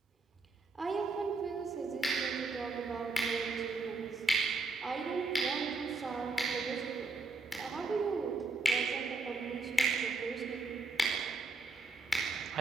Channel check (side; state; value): left; quieter; 3.9 dB